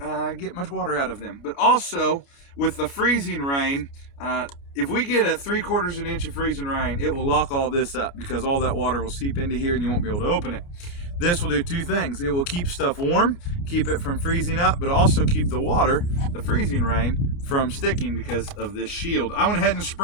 get much water out of them. But also with the freezing rain, if we get a 3/4 of an inch of freezing rain, it will lock all this up because all that water will seep into here and you won't be able to open it. This will do two things. It will keep stuff warm, keep it from freezing up, but also keep the water, the freezing rain, from sticking because of this shield. I went ahead and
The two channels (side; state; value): right; late; 29 ms